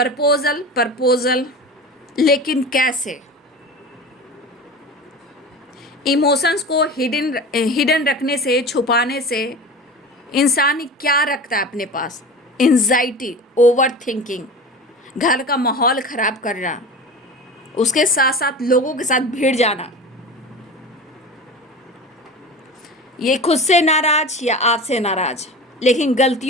प्रपोजल, लेकिन कैसे? इमोशंस को हिडन रखने से, छुपाने से इंसान क्या रखता है अपने पास? एंजाइटी, ओवर थिंकिंग, घर का माहौल ख़राब करना, उसके साथ साथ लोगों के साथ भिड़ जाना। ये खुद से नाराज या आपसे नाराज, लेकिन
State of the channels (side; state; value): both; normal; correlation 0.33